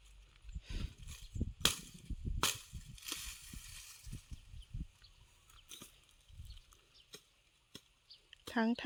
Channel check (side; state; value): both; identical; correlation 1.00